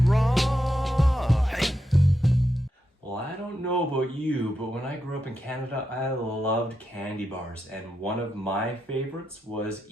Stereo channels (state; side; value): normal; both; correlation 0.86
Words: Hey. Well, I don't know about you, but when I grew up in Canada, I loved candy bars, and one of my favorites was